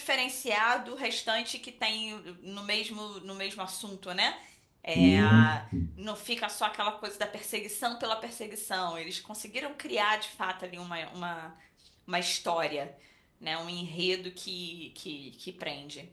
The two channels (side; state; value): both; identical; correlation 1.00